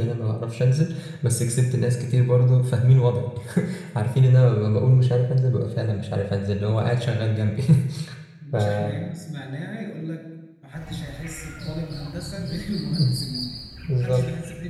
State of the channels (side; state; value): both; identical; correlation 1.00